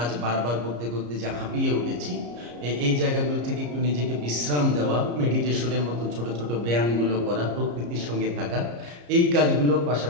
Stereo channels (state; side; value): late; left; 34 ms